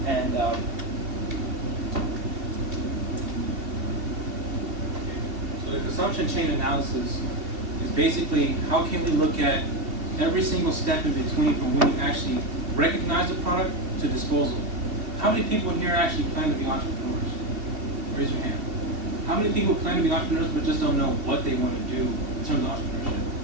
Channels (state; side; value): late; left; 2.7 ms